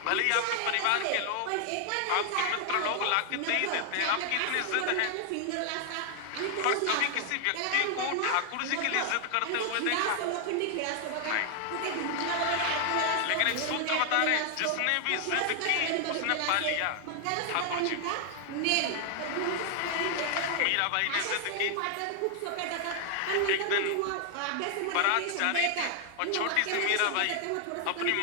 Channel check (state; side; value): different; both; correlation 0.00